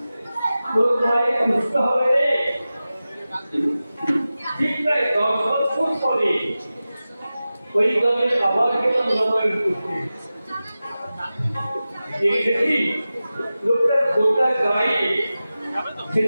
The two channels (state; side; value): inverted; both; correlation -0.95